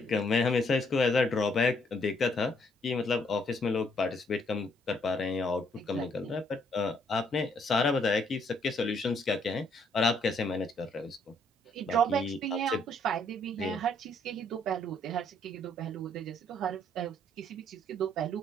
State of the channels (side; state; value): both; normal; correlation 0.68